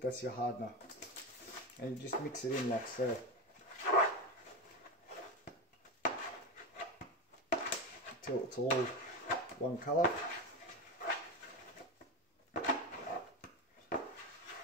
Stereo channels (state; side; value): normal; both; correlation 0.17